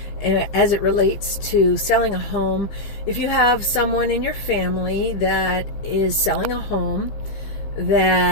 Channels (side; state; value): right; late; 15 ms